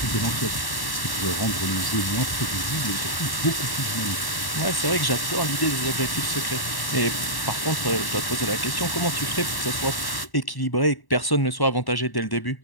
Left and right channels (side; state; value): right; late; 1.1 ms